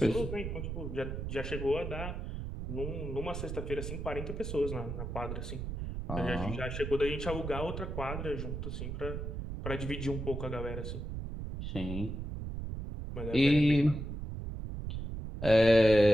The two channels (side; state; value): right; noise; rumble, 5 dB below the sound